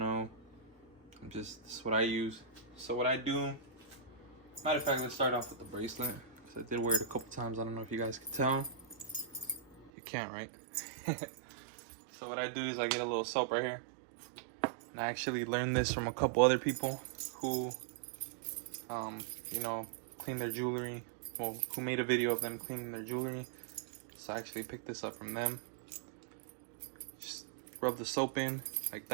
This is what I use. So what I do, matter of fact, let's start off with the bracelet, because I did wear it a couple times. I don't know if you guys can tell. You can't, right? So what I do is I get a little soap right here, and I actually learned this from a couple other people who you know, clean their jewelry, well, who made a video of them cleaning their jewelry. So I actually picked this up from them. Just rub the soap in like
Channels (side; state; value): left; drops out; at 9.9 s